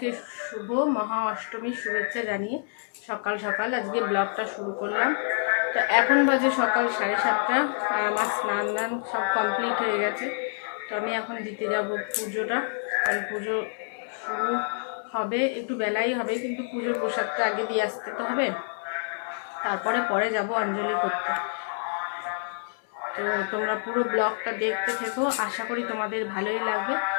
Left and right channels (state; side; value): silent; right; digital silence